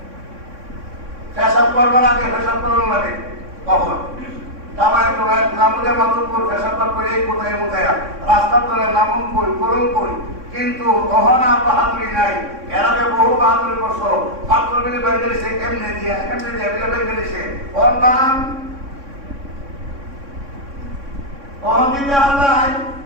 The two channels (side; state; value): left; late; 3.6 ms